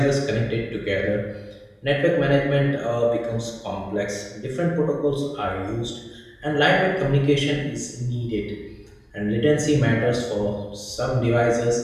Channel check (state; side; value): identical; both; correlation 1.00